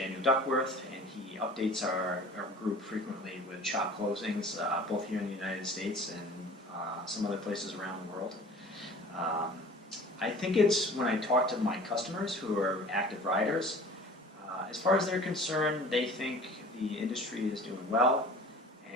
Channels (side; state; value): both; normal; correlation 0.44